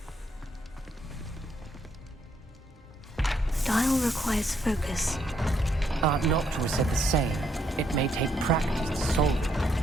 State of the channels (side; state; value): both; normal; correlation 0.74